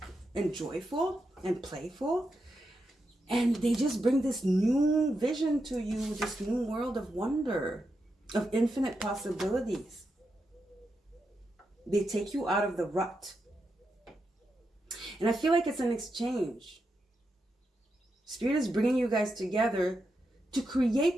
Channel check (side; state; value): both; normal; correlation 0.86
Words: and joyful and playful. And they just bring this new vision to you, this new world of wonder, of infinite possibilities. They take you out of the rut. And I feel like it's an exchange. Spirit is bringing you guys together to